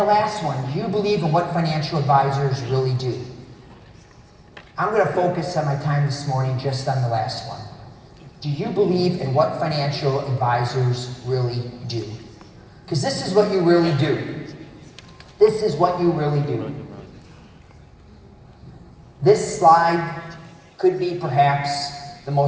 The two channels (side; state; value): both; identical; correlation 1.00